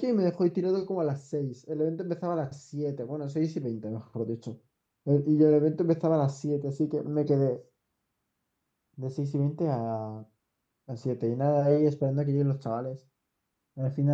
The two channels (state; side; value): identical; both; correlation 1.00